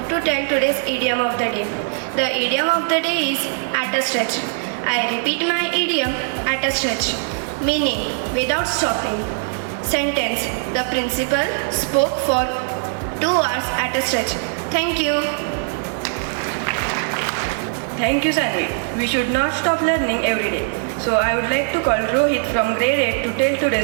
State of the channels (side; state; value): left; silent; 65 dB below the other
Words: to tell today's idiom of the day. The idiom of the day is at a stretch. I repeat my idiom, at a stretch, meaning without stopping. Sentence: the principal spoke for 2 hours at a stretch. Thank you. Thank you, Sanvi. We should not stop learning every day. So I would like to call Rohit from grade 8 to tell